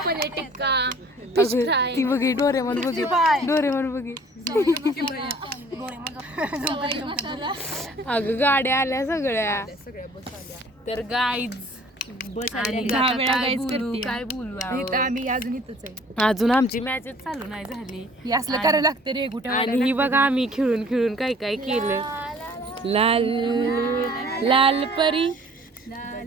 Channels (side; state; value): both; normal; correlation 0.52